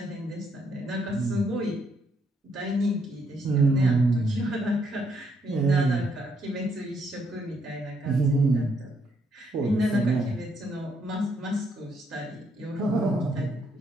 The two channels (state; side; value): normal; both; correlation 0.73